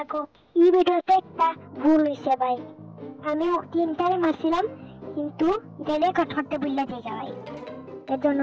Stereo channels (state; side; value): identical; both; correlation 1.00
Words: এই ভিডিওতে একটা ভুল হয়েছে ভাই, আমি 3টারে মারছিলাম, কিন্তু এটা রেকর্ড করতে ভুলে যাই ভাই, এর জন্য